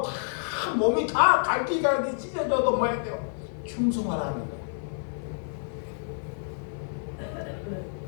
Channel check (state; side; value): silent; right; 58 dB below the other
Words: 다 몸이 다 갈기갈기 찢어져도 뭐 해야 돼요? 충성하라는 거예요.